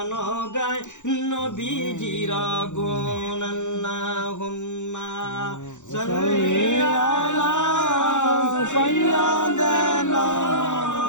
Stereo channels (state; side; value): late; right; 0.85 ms